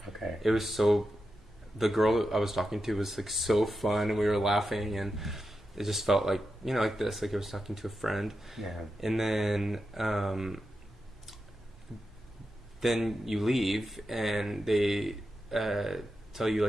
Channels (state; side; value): normal; both; correlation 0.89